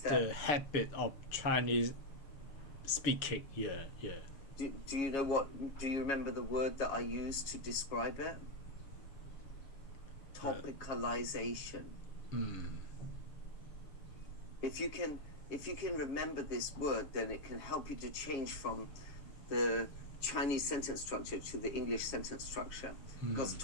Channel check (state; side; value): late; right; 7.3 ms